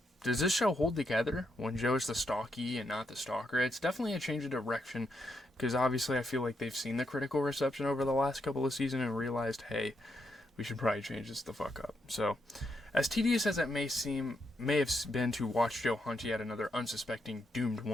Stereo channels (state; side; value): normal; both; correlation 0.80